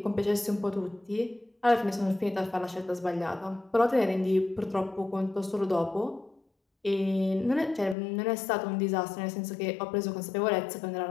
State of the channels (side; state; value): right; drops out; at 8.0 s